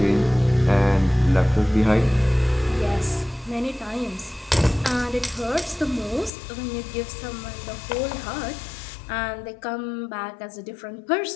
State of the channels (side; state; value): right; drops out; at 6.3 s